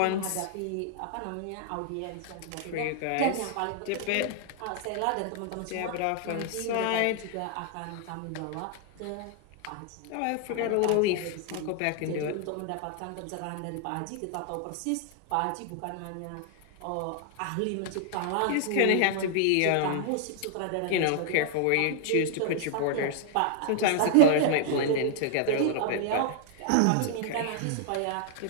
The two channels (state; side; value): different; both; correlation 0.00